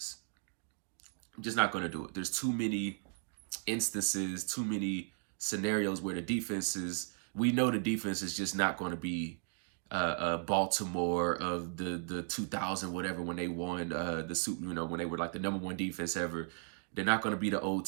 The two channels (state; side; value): silent; left; 54 dB below the other